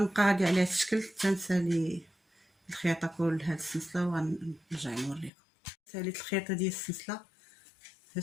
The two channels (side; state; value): right; drops out; at 5.3 s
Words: غادي على هاد الشكل تنسالي الخياطه كل هاد السلسله، وغنرجع نوريكم. ساليت الخياطه ديال السلسله هاد